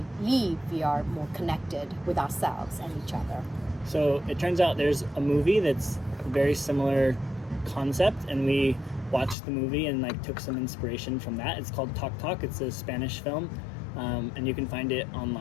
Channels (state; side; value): drops out; right; at 9.3 s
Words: leave we are more connected with ourselves and each other. So it turns out there's a movie that's a very similar concept, and we watched the movie and took some inspiration from that. It's called Talk Talk. It's a Spanish film, and you can find it